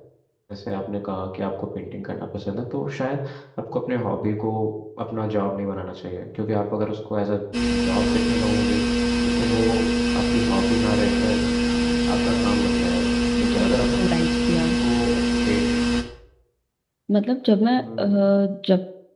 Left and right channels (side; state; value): both; identical; correlation 1.00